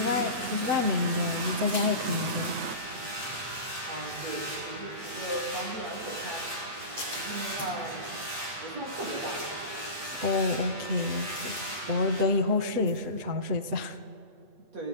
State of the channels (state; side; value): late; left; 8.5 ms